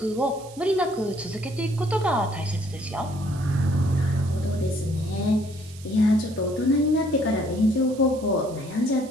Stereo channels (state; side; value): noise; right; hiss, 20 dB below the sound